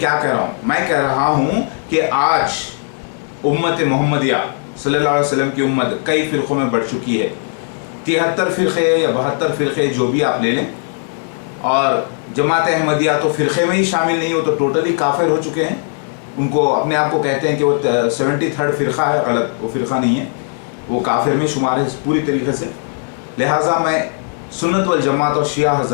कह रहा हूँ। मैं कह रहा हूँ कि आज उम्मत मोहम्मदिया सल्लल्लाहु अलैहि वसल्लम की उम्मत कई फ़िरक़ों में बढ़ चुकी है, 73 फ़िरक़े या 72 फ़िरक़े जो भी आप ले लें, और जमात अहमदिया तो फ़िरक़े में ही शामिल नहीं हो तो टोटली काफिर हो चुके हैं। उनको अपने आप को कहते हैं कि वो 73rd फ़िरक़ा है, गलत, वो फ़िरक़ा नहीं है, वो काफिर में शुमार है पूरी तरीके से। लिहाजा मैं सुन्नत वल जमात और शिया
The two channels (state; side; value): silent; right; 56 dB below the other